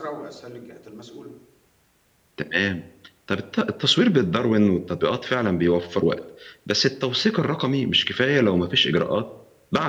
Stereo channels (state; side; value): identical; both; correlation 1.00